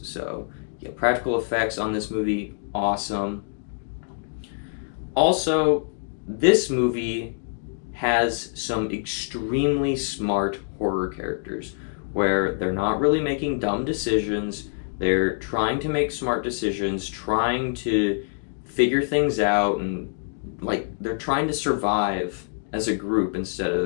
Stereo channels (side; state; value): right; silent; digital silence